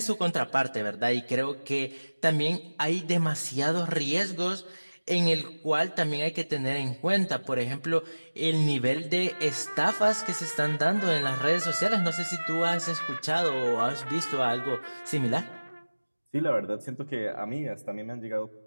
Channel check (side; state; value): both; inverted; correlation -1.00